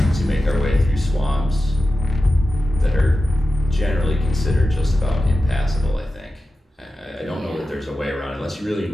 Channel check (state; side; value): normal; both; correlation 0.93